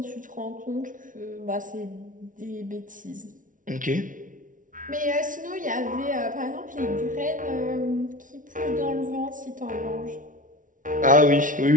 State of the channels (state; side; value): late; left; 0.38 ms